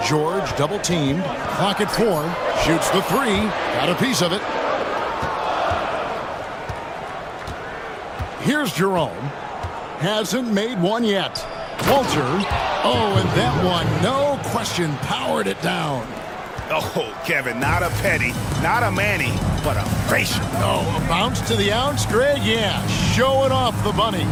George double teamed. Clock at 4. Shoots the 3. Got a piece of it. Here's Jerome. Hasn't made one yet. Walter. Oh, and that one, no question, powered it down. Oh, Kevin, not a Petty, not a Manny, but a Frazier. Oh, a bounce to the ounce, Greg? Yeah, showing off the bunnies.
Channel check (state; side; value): identical; both; correlation 1.00